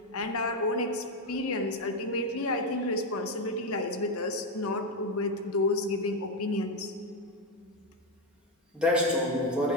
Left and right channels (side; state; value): both; normal; correlation 0.07